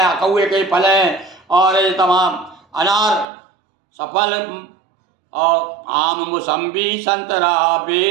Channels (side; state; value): left; drops out; at 3.2 s